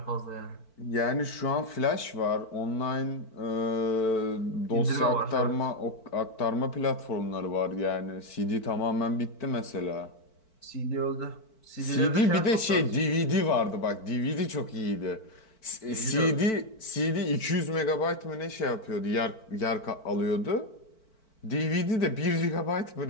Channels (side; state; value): right; late; 4.5 ms